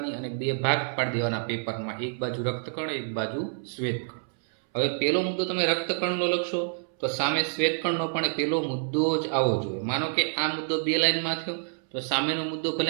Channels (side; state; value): left; silent; 60 dB below the other